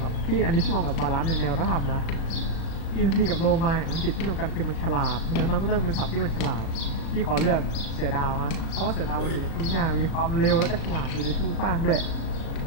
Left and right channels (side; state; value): right; late; 36 ms